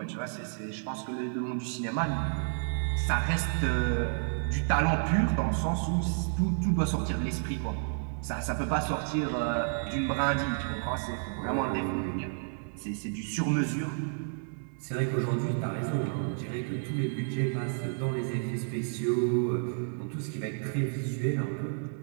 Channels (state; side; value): silent; left; 57 dB below the other